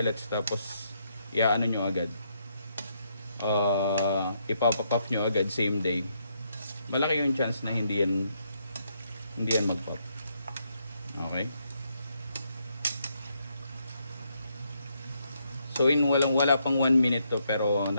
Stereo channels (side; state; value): both; inverted; correlation -0.76